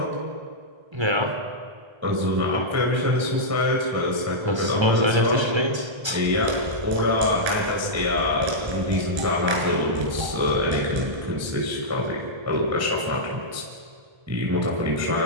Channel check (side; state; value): left; late; 1.3 ms